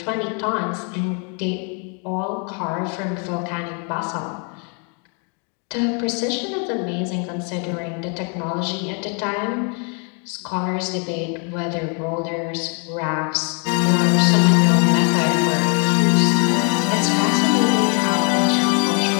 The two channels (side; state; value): right; quieter; 37.9 dB